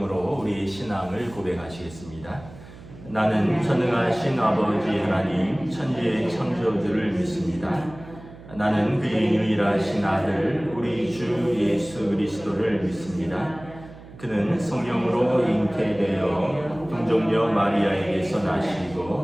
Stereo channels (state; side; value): noise; right; hum, 18 dB below the sound